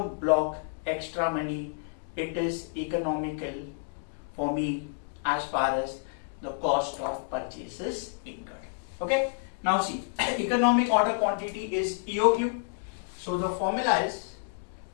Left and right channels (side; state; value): right; silent; digital silence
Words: block extra money. It is economical for me as far as the cost of purchase is incurred. Okay. Now see, economic order quantity is EOQ. So the formula is